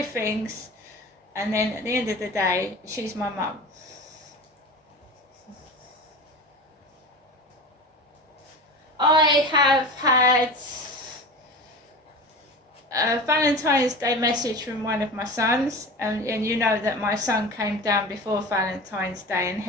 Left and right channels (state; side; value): normal; both; correlation 0.31